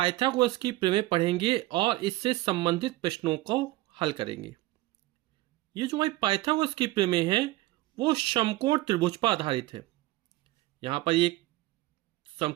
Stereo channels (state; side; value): quieter; left; 18.1 dB